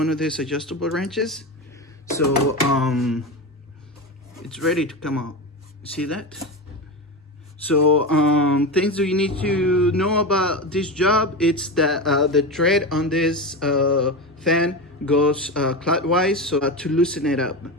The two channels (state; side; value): normal; both; correlation 0.20